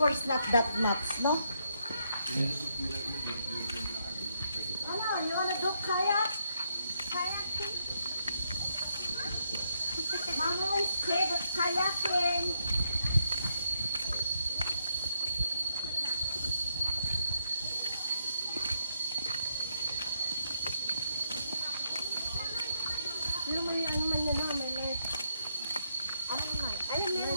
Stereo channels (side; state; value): both; inverted; correlation -0.78